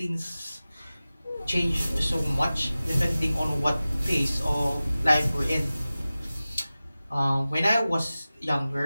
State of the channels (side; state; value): both; inverted; correlation -0.96